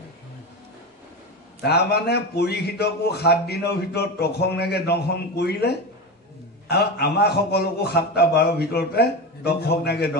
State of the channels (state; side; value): normal; both; correlation 0.21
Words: তাৰমানে পৰীক্ষিতকো 7 দিনৰ ভিতৰত তক্ষকনাগে দংশন কৰিলে, আৰু আমাৰ সকলোকো 7টা 12 ভিতৰতে তক্ষকনাগে